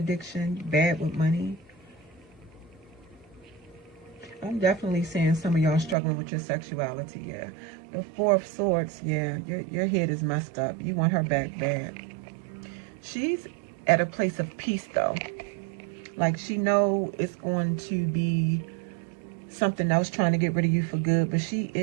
bad with money. I'm definitely seeing some of y'all struggling with your sexuality, yeah. The Four of Swords, yeah, your head is messed up. You want her back bad. She's at a place of peace, though. Like, she know it's going to be something else trying to get rid of you for good, but she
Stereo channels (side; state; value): left; drops out; at 6.0 s